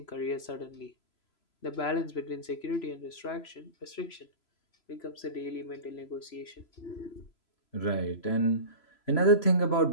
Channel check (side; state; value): right; late; 3.0 ms